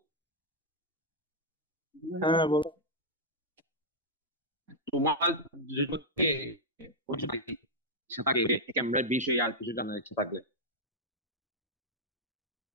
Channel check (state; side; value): normal; both; correlation -0.05